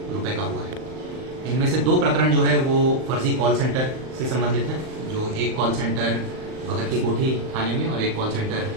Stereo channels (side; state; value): left; late; 38 ms